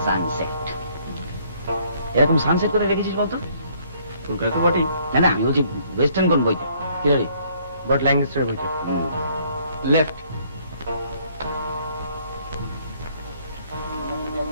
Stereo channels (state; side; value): inverted; both; correlation -0.64